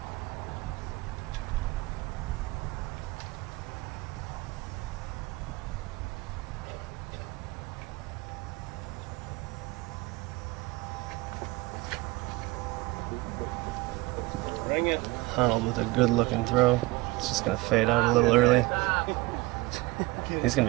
Honold with a good looking throw. It's just going to fade out a little early. He's going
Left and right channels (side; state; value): left; quieter; 20.5 dB